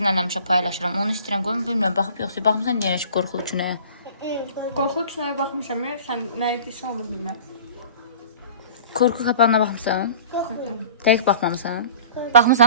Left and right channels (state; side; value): inverted; both; correlation -0.44